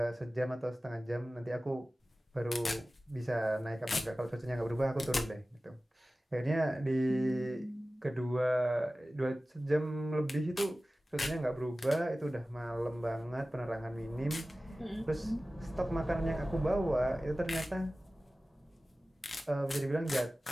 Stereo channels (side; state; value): both; normal; correlation 0.96